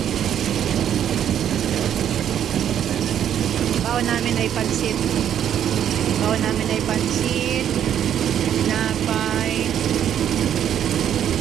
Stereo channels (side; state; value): left; quieter; 9.8 dB